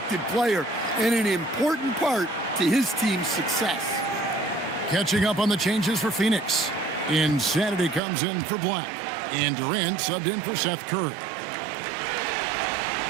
player and an important part to his team's success. Catching up on the changes for Phoenix. Insanity comes in for Black. And Durant subbed in for Seth Curry.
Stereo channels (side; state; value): left; drops out; at 8.0 s